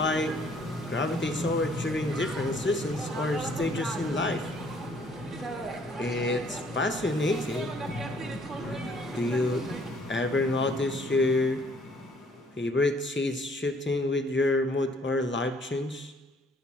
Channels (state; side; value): normal; both; correlation 0.61